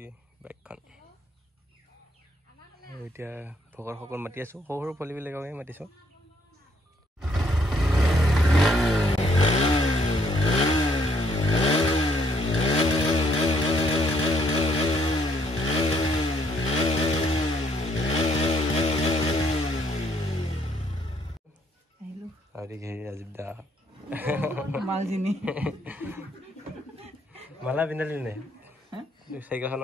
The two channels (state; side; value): normal; both; correlation 0.68